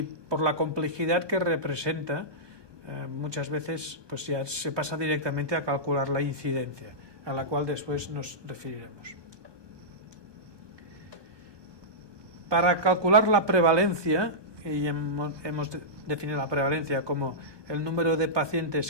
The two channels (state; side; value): late; left; 1.2 ms